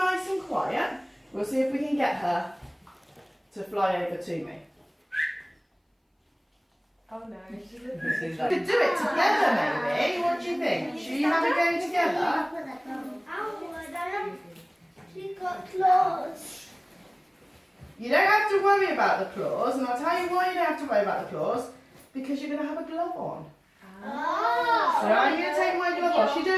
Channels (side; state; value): both; identical; correlation 1.00